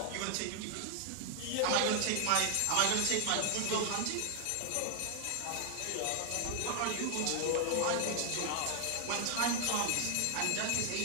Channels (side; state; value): both; different; correlation 0.00